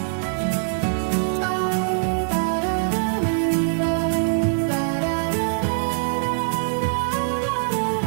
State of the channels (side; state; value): left; silent; digital silence